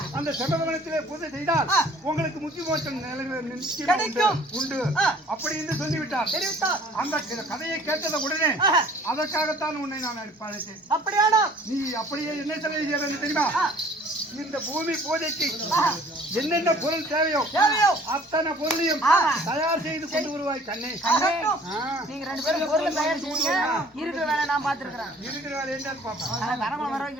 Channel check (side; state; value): both; normal; correlation 0.53